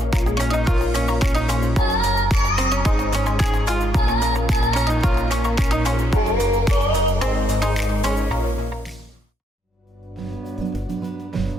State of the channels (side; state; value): both; normal; correlation 0.77